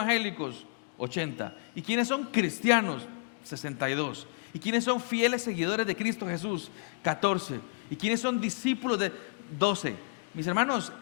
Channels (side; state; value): right; quieter; 35.8 dB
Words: 80. ¿Y quiénes son cristianos? 62. ¿Y quiénes son fieles seguidores de Cristo Jesús? 14. ¿Y quiénes son discípulos de 12? Mis hermanos,